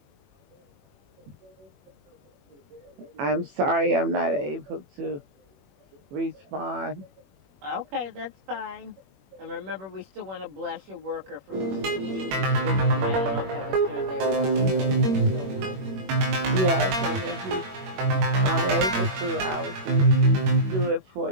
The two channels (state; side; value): late; left; 21 ms